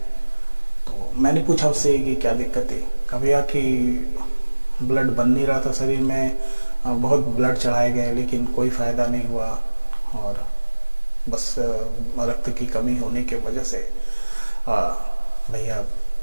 तो मैंने पूछा उससे कि क्या दिक्कत है। कहा भैया कि ब्लड बन नहीं रहा था शरीर में, बहुत ब्लड चढ़ाए गए लेकिन कोई फ़ायदा नहीं हुआ और बस रक्त की कमी होने की वजह से भैया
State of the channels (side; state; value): both; inverted; correlation -1.00